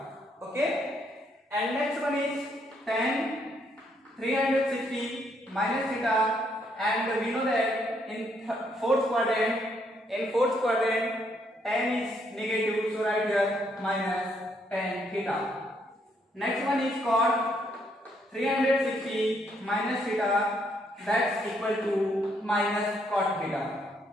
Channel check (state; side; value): normal; both; correlation 0.72